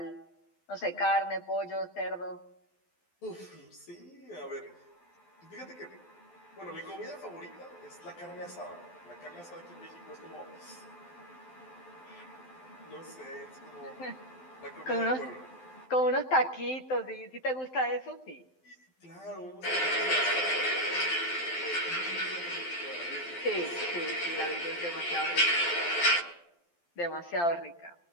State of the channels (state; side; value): late; right; 12 ms